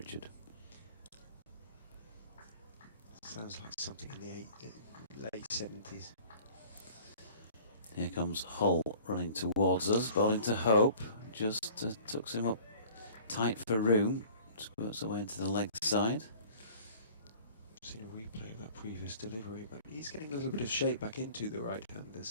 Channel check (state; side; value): inverted; both; correlation -0.48